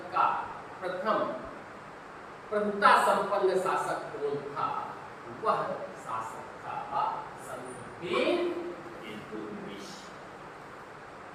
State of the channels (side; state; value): both; identical; correlation 1.00